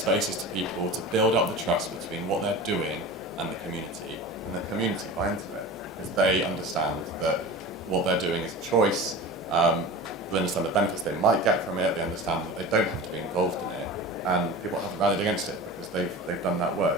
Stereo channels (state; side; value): normal; both; correlation 0.33